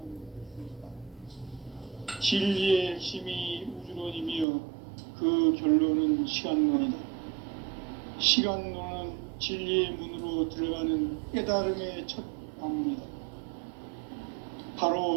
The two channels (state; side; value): drops out; left; at 4.5 s